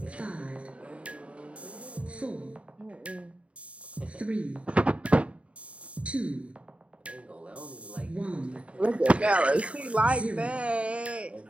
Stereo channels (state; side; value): late; left; 0.063 ms